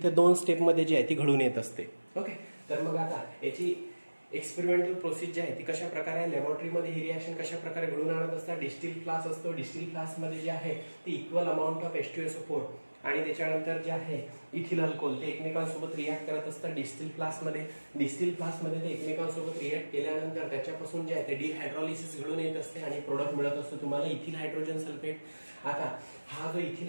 2 स्टेप मध्ये जी आहे ती घडून येत असते. ओके, तर मग आता याची एक्सपेरिमेंटल प्रोसेस जी आहे ती कशा प्रकारे लॅबोरेटरीमध्ये ही रिॲक्शन कशा प्रकारे घडून आणत असतात. डिस्टिल फ्लास्क असतो, डिस्टिल फ्लास्कमध्ये जे आहे ती इक्वल अमाऊंट ऑफ H2SO4 आणि त्याच्यानंतर जे आहे इथिल अल्कोहोल ते एकमेकांसोबत रिॲक्ट करत असतात डिस्टिल फ्लास्कमध्ये. डिस्टिल फ्लास्कमध्ये ते एकमेकांसोबत रिॲक्ट केल्यानंतर त्याच्यापासून जे आहे ते डिहायड्रॉलिसिस घडून येत असते आणि प्रोडक्ट मिळत असतो तुम्हाला इथिल हायड्रोजन सल्फेट. आता हा जो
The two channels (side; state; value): both; inverted; correlation -1.00